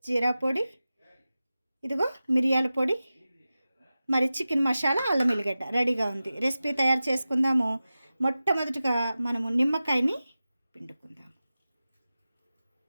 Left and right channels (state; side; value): inverted; both; correlation -0.95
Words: జీరా పొడి, ఇదిగో మిరియాల పొడి, మరి చికెన్ మసాలా, అల్లం ఎల్లిగడ్డ రెడీగా ఉంది. రెసిపీ తయారు చేసుకుందాము. మొట్టమొదటిగా మనము నిమ్మకాయని పిండుకుందాం.